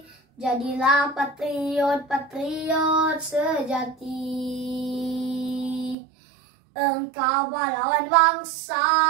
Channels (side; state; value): left; drops out; at 6.0 s